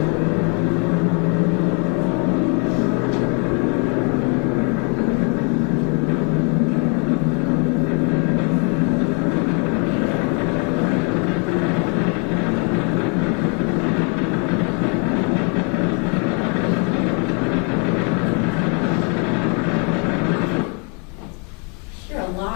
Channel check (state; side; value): quieter; right; 36.1 dB